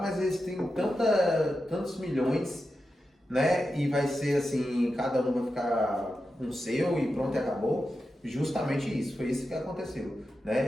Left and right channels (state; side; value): normal; both; correlation 0.90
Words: eles têm tantos milhões, né? E vai ser assim, cada um vai ficar com o seu e pronto, e acabou. Justamente isso, foi isso que aconteceu,